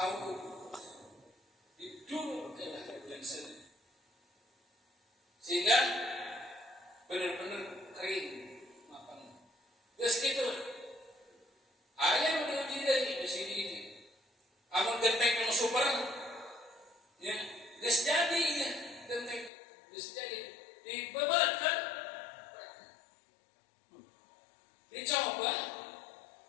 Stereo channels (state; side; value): drops out; right; at 19.5 s